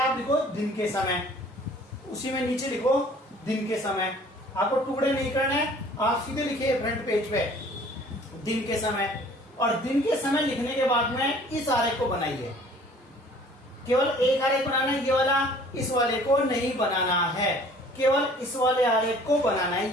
आप लिखो दिन के समय, उसी में नीचे लिखो दिन के समय। आपको टुकड़े नहीं करने, आप सीधे लिखिए फ्रंट पेज पे दिन के समय। और दिन के समय लिखने के बाद में इस आरेख को बनाइए। केवल एक आरेख बनाना है, ये वाला, इस वाले को नहीं बनाना है, केवल इस वाले आरेख को बनाना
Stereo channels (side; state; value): both; normal; correlation 0.52